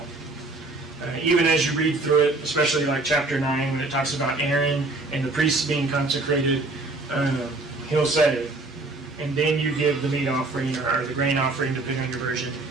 Even as you read through it, especially like chapter 9, when it talks about Aaron and the priests being consecrated, he'll say, and then you give the meat offering or the grain offering, depending on your version,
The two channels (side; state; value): left; quieter; 3.2 dB